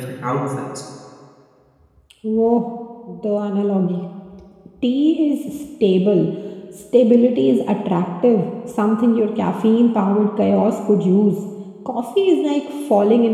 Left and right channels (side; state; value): both; identical; correlation 1.00